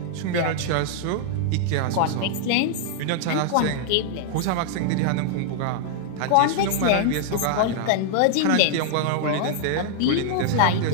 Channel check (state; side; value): different; both; correlation -0.01